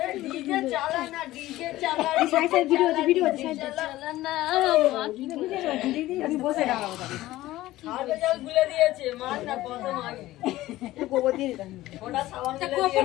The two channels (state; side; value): quieter; right; 16.3 dB